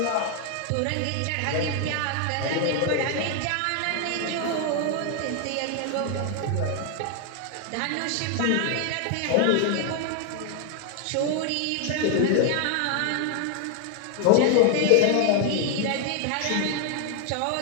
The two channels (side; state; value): both; different; correlation 0.00